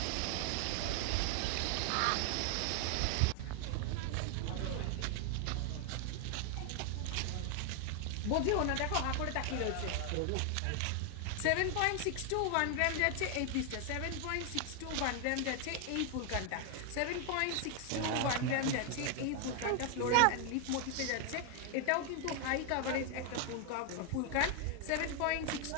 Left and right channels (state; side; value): different; both; correlation 0.00